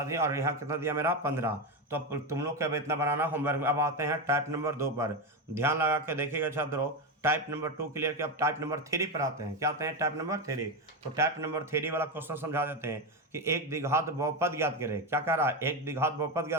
दिए, और यहाँ कितना दिया मेरा 15। तो अब तुम लोग क्या इतना बनाना होमवर्क में। अब आते हैं टाइप नंबर 2 पर, ध्यान लगा के देखिएगा छात्रों। टाइप नंबर 2 क्लियर किया, अब टाइप नंबर 3 पर आते हैं। क्या आते हैं, टाइप नंबर 3। तो टाइप नंबर 3 वाला क्वेश्चन समझा देते हैं कि एक द्विघात बहुपद ज्ञात करें। क्या कह रहा है, एक द्विघात बहुपद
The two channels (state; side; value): normal; both; correlation 0.13